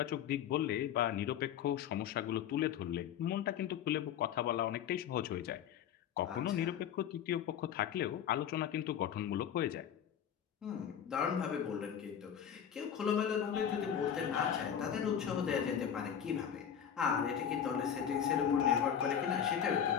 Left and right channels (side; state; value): right; quieter; 8.9 dB